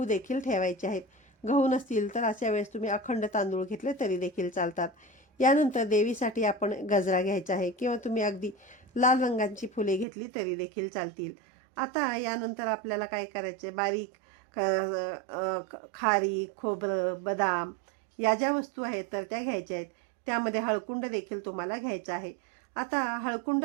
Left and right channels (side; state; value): left; drops out; at 10.1 s